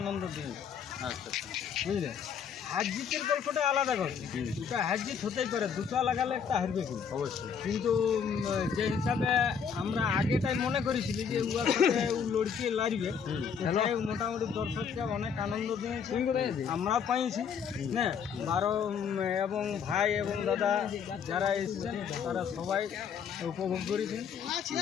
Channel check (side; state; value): right; quieter; 7.0 dB